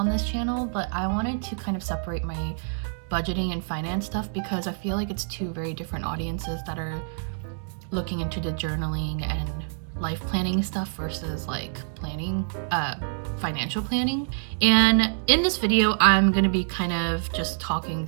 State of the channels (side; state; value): left; silent; 61 dB below the other